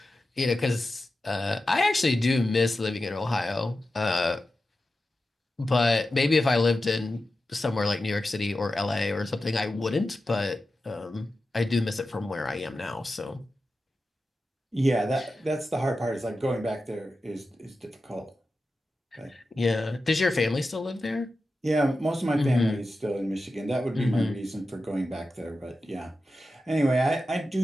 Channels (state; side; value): normal; both; correlation 0.92